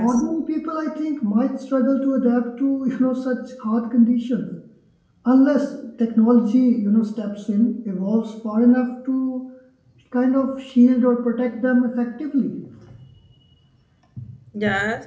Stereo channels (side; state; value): both; identical; correlation 1.00